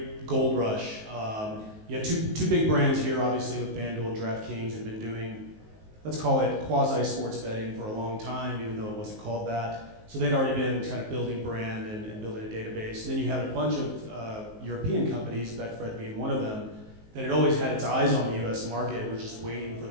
gold rush. You had two big brands here, obviously, with FanDuel and DraftKings have been doing, let's call it quasi-sports betting for a long time, even though it wasn't called that. So they'd already been kind of building brand and building a database. And then you had a bunch of European companies, Betfred being one of them, that had always had its eyes on the US market and were just waiting for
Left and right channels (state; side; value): late; left; 19 ms